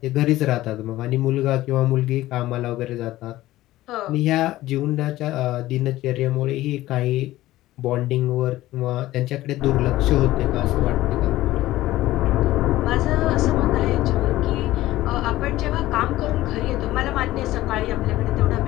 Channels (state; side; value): quieter; right; 16.1 dB